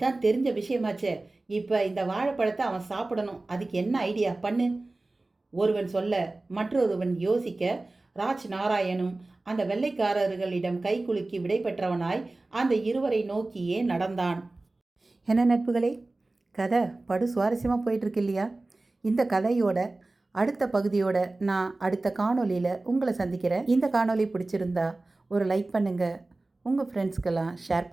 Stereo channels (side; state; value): left; quieter; 3.1 dB